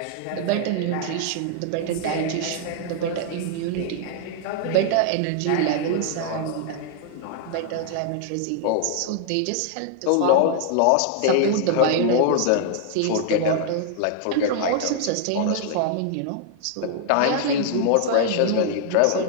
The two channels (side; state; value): both; different; correlation 0.00